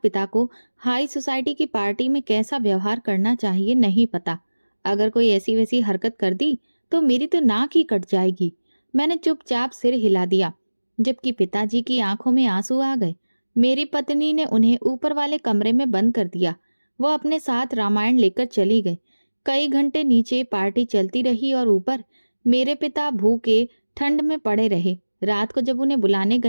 को हाई सोसाइटी की पार्टी में कैसा व्यवहार करना चाहिए नहीं पता। अगर कोई ऐसी वैसी हरकत कर दी तो मेरी तो नाक ही कट जाएगी। मैंने चुपचाप सिर हिला दिया, जबकि पिताजी की आंखों में आंसू आ गए। मेरी पत्नी ने उन्हें ऊपर वाले कमरे में बंद कर दिया। वो अपने साथ रामायण लेकर चली गई। कई घंटे नीचे पार्टी चलती रही और ऊपर मेरे पिता भूखे ठंड में पड़े रहे। रात को जब उन्हें बुलाने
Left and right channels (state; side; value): inverted; both; correlation -1.00